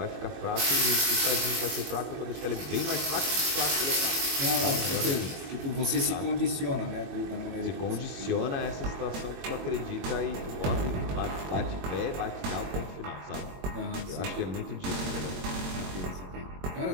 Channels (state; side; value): late; left; 22 ms